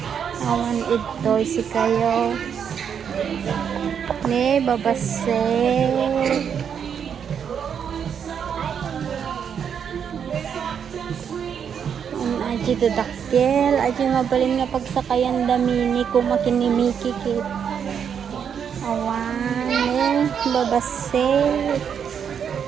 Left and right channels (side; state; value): left; quieter; 7.7 dB